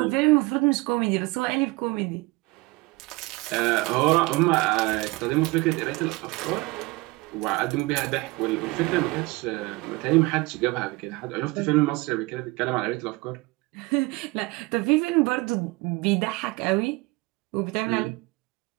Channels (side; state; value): left; quieter; 23.6 dB